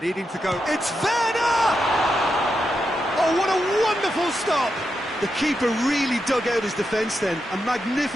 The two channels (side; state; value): both; normal; correlation 0.86